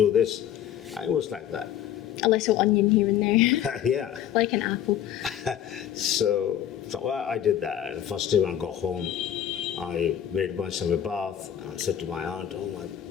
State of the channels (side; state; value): right; quieter; 10.4 dB